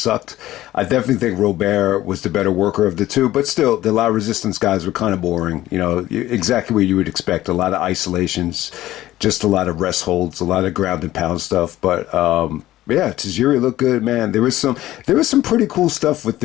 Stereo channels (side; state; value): right; quieter; 15.0 dB